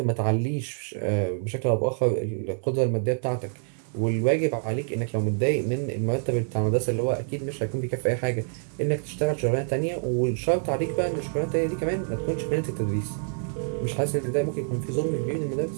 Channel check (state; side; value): silent; left; digital silence